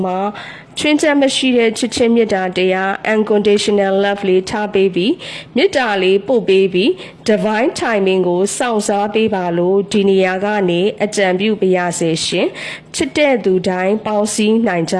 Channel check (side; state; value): both; identical; correlation 1.00